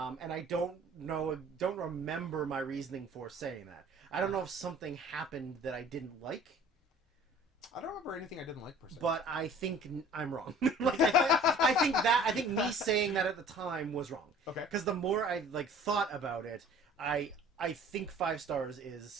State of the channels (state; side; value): normal; both; correlation 0.50